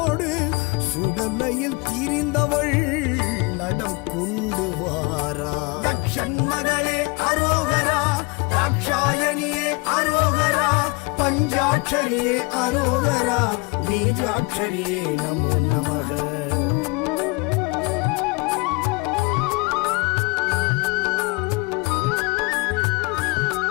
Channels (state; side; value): quieter; right; 27.4 dB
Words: சுடலையில் திரிந்தவள் நடம் கொண்டு வாரா. தக்ஷன் மகளே அரோகரா, ராட்சாயணியே அரோகரா, பஞ்சாட்சரியே அரோகரா, பீஜாட்சரியே நமோ நமக.